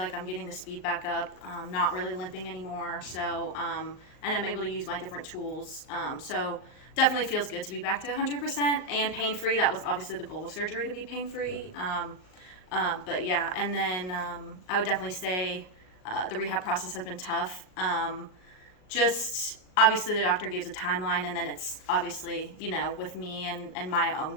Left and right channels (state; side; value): late; right; 38 ms